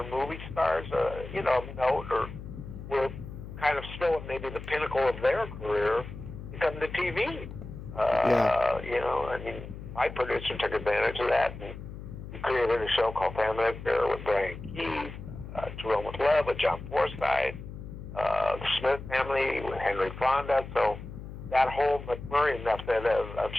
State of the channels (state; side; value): noise; left; hum, 11 dB below the sound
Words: movie stars, note or were kind of still at maybe the pinnacle of their career, to come to TV. My producer took advantage of that, and he created a show called Family Affair with Brian Keith, Jerome with Love with John Forsythe, the Smith family with Henry Fonda. So that whole McMurray method of